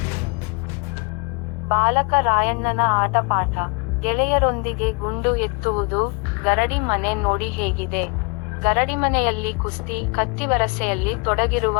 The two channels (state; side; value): quieter; right; 31.4 dB